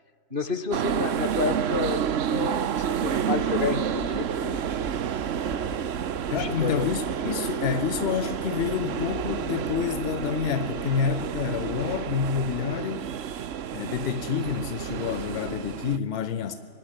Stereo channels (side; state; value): left; late; 3.0 ms